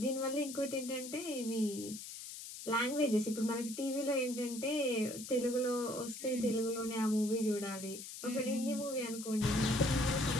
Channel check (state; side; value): noise; left; hiss, 10 dB below the sound